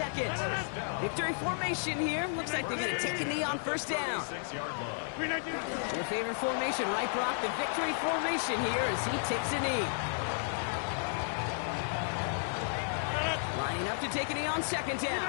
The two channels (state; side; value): silent; right; 56 dB below the other